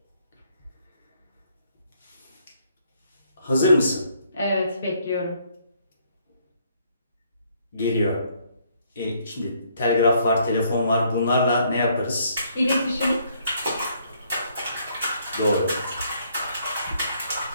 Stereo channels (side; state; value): both; inverted; correlation -0.68